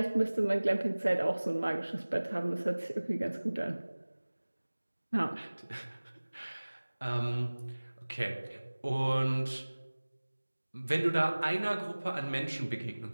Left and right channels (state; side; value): inverted; both; correlation -1.00